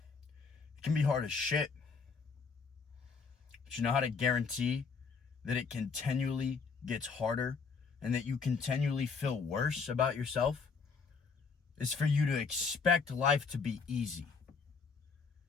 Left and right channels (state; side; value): quieter; right; 5.2 dB